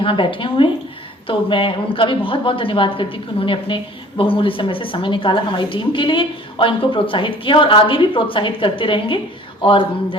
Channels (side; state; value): both; normal; correlation 0.50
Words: बैठे हुए हैं, तो मैं उनका भी बहुत बहुत धन्यवाद करती हूँ कि उन्होंने अपने बहुमूल्य समय से समय निकाला हमारी टीम के लिए और इनको प्रोत्साहित किया और आगे भी प्रोत्साहित करते रहेंगे। और